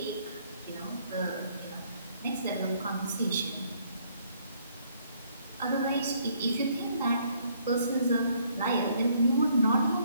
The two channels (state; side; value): inverted; both; correlation -0.67